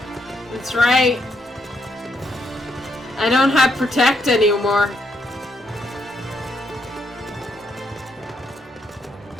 That's right. I don't have Protect anymore.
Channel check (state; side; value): normal; both; correlation 0.77